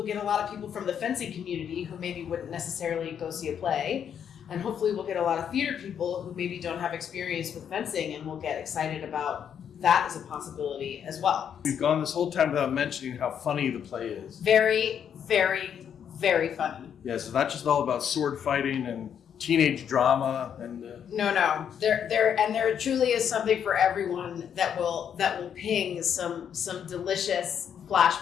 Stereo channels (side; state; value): right; quieter; 8.4 dB